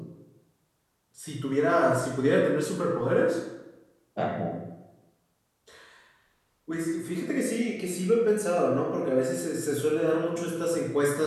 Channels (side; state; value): both; identical; correlation 1.00